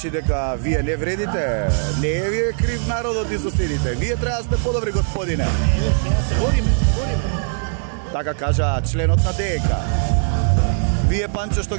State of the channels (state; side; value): silent; left; 66 dB below the other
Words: дека вие не вредите, не е вие крив народот и соседите. Вие треба да сте подобри, господине. Бориме. Така кажа членот на ДНК. Вие, Панчо, што